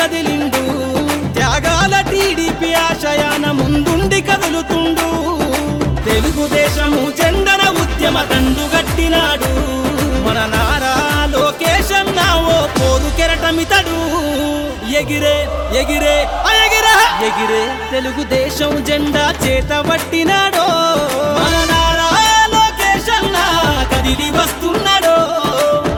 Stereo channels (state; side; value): identical; both; correlation 1.00